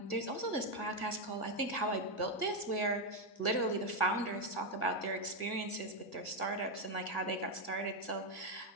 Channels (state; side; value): late; right; 1.6 ms